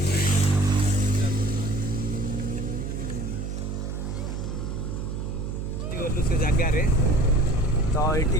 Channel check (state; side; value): noise; right; hum, 4 dB below the sound